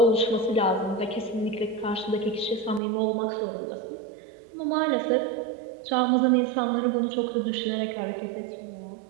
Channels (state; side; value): drops out; left; at 2.8 s